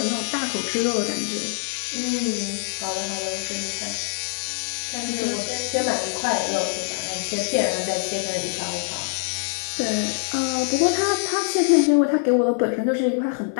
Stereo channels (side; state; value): right; silent; digital silence